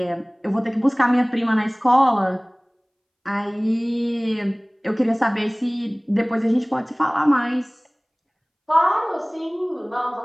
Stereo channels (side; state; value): both; identical; correlation 1.00